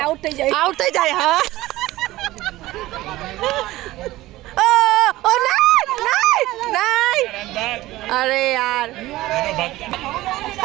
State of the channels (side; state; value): left; quieter; 17.2 dB